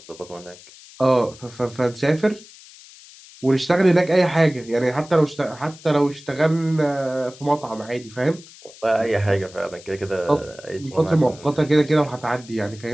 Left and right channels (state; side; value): noise; left; hiss, 21 dB below the sound